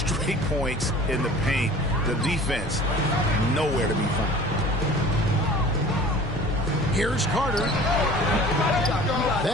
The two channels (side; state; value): both; normal; correlation 0.44